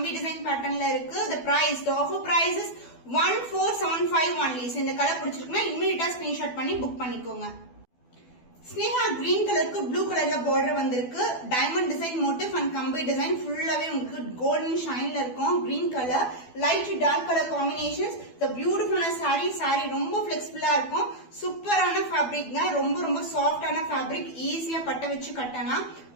டிசைன் பேட்டர்ன்ல இருக்கு. the offer price is 1475 only. இந்த கலர் பிடிச்சிருக்குன்னா இமிடியேட்டா ஸ்கிரீன்ஷாட் பண்ணி புக் பண்ணிக்கோங்க. ஸ்னேகா கிரீன் கலருக்கு ப்ளூ கலர்ல பார்டர் வந்திருக்கு. டைமண்ட் டிசைன் மோட்டிவ் அண்ட் கம்பி டிசைன் ஃபுல்லாவே உங்களுக்கு கோல்டன் ஷைன்ல இருக்கும். Green colour light dark colour combinations. பியூட்டிஃபுல்லான சாரி ரொம்ப பிளெக்சிபிளா இருக்கும். சூப்பரான ஃபேப்ரிக்ங்க. ரொம்ப சாஃப்டான ஃபேப்ரிக். ஈஸியா பட்ட வச்சு கட்டலாம்.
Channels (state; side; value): late; right; 12 ms